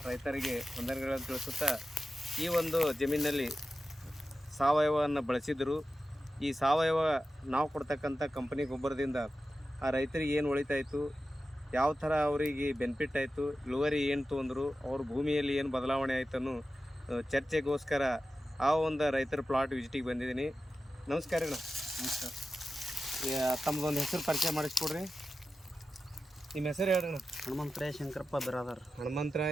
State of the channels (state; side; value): normal; both; correlation 0.93